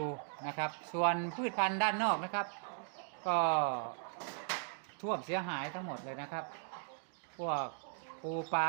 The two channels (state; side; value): silent; left; digital silence